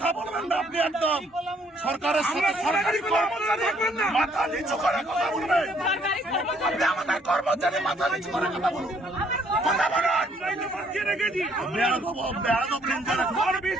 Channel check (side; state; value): both; normal; correlation 0.65